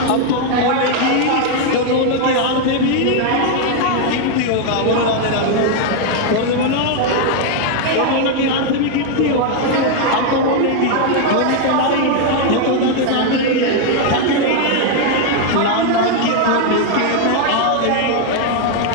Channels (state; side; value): different; both; correlation 0.00